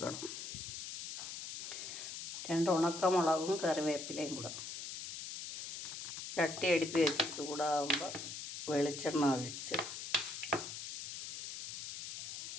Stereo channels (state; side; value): noise; left; hiss, 7 dB below the sound